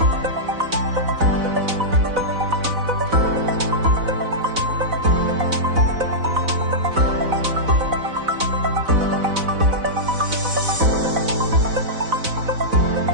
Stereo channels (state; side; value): late; left; 4.0 ms